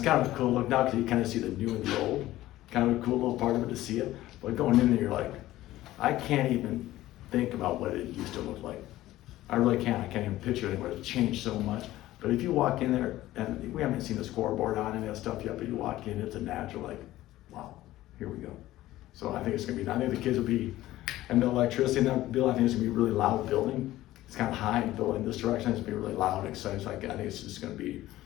kind of a cool look now because you kind of see the new and the old. Kind of a cool little part of it to see it. But going in there, you're like, I can't even think about what it used to look like. I really can't. I can't even picture it anymore. It's changed so much. But if you walk in there, and we haven't seen the scoreboard on any of that stuff yet, but you walk in, it's a natural, like, wow, here we go. So I think it's gonna be, I think the kids will be, and the electricity in that building, I think it's gonna be a really loud building. It's kind of high and building this direction, it's gonna be really loud and exciting. So I think it's just gonna be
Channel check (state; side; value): quieter; right; 15.6 dB